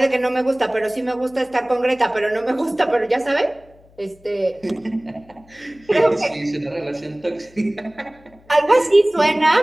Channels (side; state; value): left; noise; hum, 28 dB below the sound